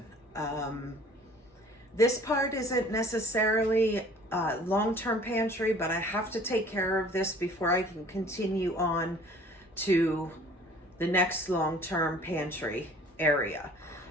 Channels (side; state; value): both; normal; correlation 0.51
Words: This part isn't necessarily long-term pantry, but I have to take care of this before I can continue on to the next long-term pantry area.